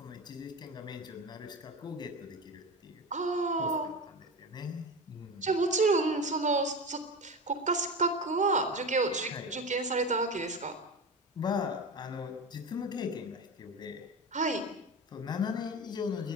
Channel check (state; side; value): normal; both; correlation 0.26